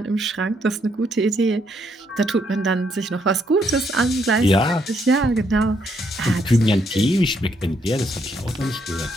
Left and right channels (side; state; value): both; normal; correlation 0.73